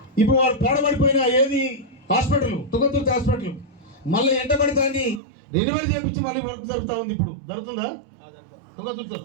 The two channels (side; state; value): left; drops out; at 5.2 s